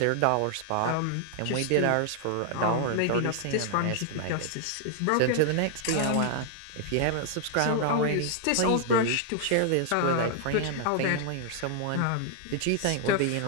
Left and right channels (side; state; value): both; different; correlation 0.00